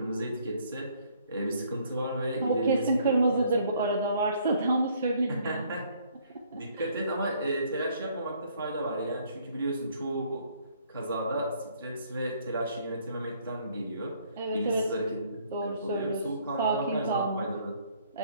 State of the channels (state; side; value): inverted; both; correlation -0.63